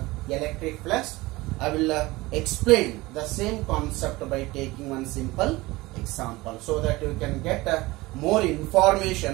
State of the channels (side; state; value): left; quieter; 20.6 dB